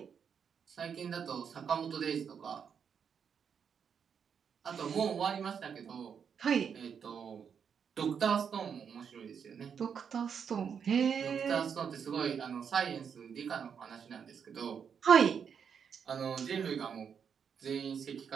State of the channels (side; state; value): left; quieter; 7.1 dB